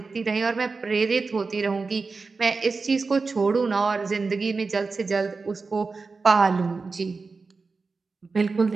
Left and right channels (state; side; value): quieter; left; 4.3 dB